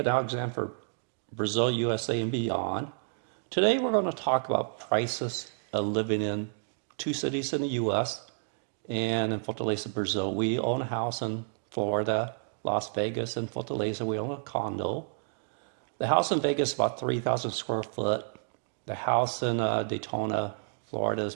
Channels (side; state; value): left; silent; digital silence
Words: Alexander for Brazil, USA, and beyond. Today we're going to talk about prices of living in two cities in the U.S. and in Fortaleza, Brazil. We own a house in Florida, Las Vegas, and Fortaleza. We own a condo. The house in Vegas is about 3,000 square foot. The house in Daytona, Florida is